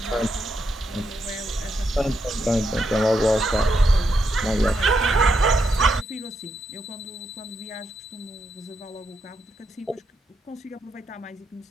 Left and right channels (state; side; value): normal; both; correlation 0.81